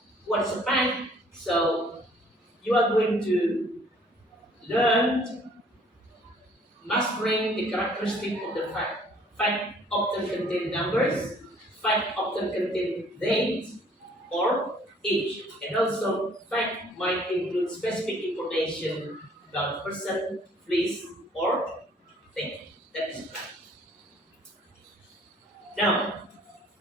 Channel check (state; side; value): normal; both; correlation 0.58